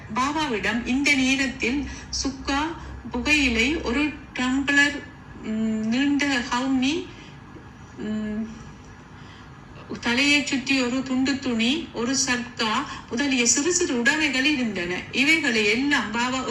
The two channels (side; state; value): both; identical; correlation 1.00